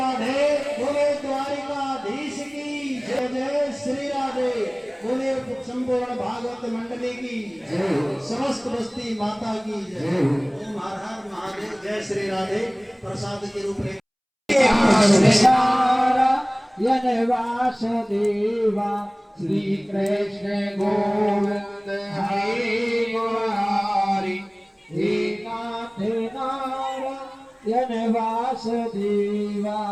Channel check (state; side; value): identical; both; correlation 1.00